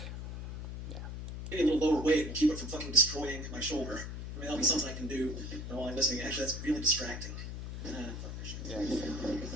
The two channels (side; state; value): left; noise; hum, 7 dB below the sound